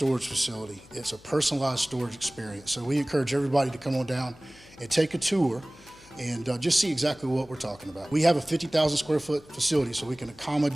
facility, it's a personalized storage experience. So we encourage everybody to come on down and take a tour and just see exactly what we're talking about. We have a 50,000 square foot facility, so we can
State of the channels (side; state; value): left; noise; hum, 25 dB below the sound